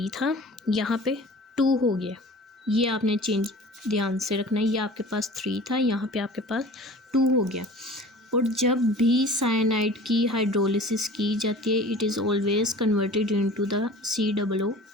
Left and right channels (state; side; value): normal; both; correlation 0.42